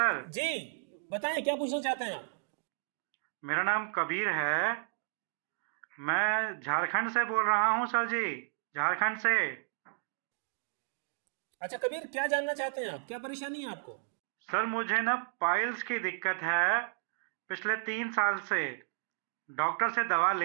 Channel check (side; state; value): left; silent; digital silence